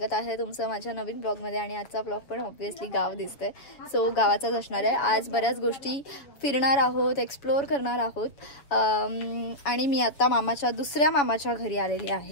आहे तुमचं माझ्या नवीन ब्लॉगमध्ये. आणि आजचा ब्लॉग पण ऑब्व्हियसली गाव दिसते, सो गावाचाच असणार आहे. आज बऱ्याच गोष्टी फिरणार आहोत, एक्सप्लोअर करणार आहोत. आणि मी आता दुसऱ्या मामाच्या घरी आलेली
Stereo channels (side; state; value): right; late; 7.2 ms